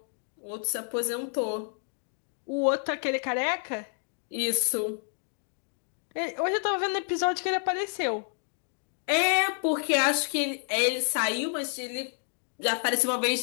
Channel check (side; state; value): right; silent; 58 dB below the other